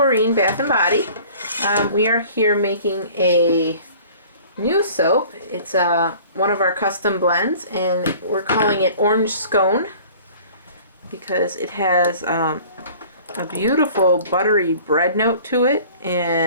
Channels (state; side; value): inverted; both; correlation -0.48